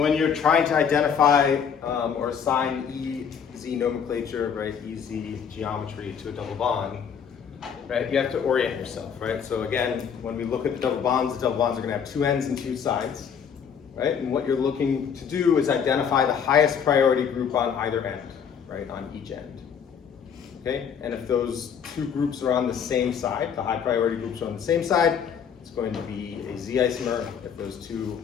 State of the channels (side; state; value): right; quieter; 7.3 dB